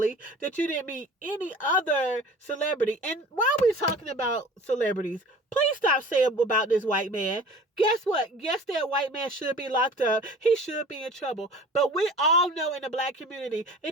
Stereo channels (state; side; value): normal; both; correlation 0.43